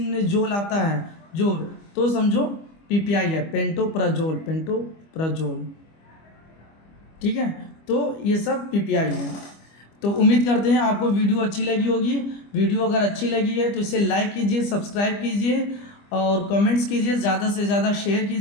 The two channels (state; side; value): late; right; 25 ms